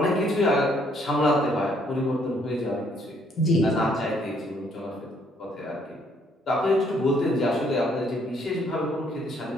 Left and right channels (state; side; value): normal; both; correlation 0.67